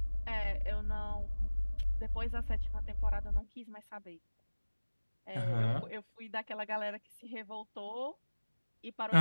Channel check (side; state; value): both; inverted; correlation -1.00